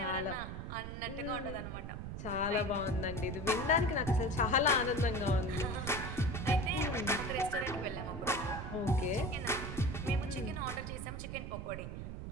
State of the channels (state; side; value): noise; right; rumble, 7 dB below the sound